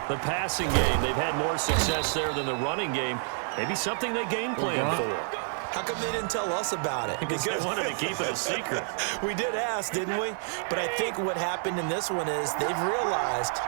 The passing game, they've had more success there than the running game. Maybe something they game plan for. How come they didn't tell us about it? Because they wanted to keep it a secret. We did ask, didn't we? But I think what happened in this one is they've realized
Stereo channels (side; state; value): left; silent; 59 dB below the other